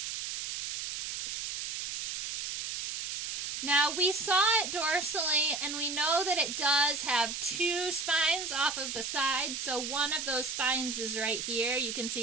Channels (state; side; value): noise; right; hiss, 4 dB below the sound